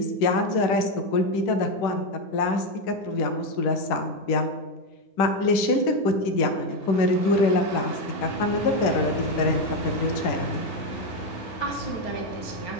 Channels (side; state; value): right; late; 10 ms